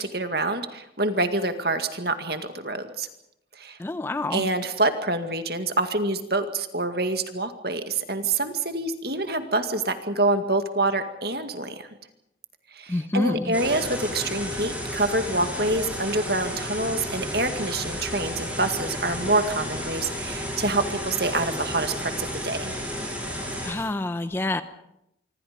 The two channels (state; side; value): normal; both; correlation -0.02